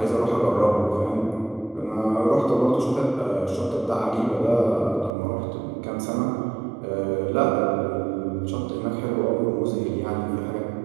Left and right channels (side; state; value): left; drops out; at 5.1 s